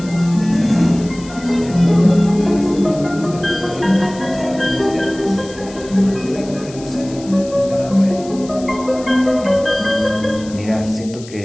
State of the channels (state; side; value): noise; left; hiss, 19 dB below the sound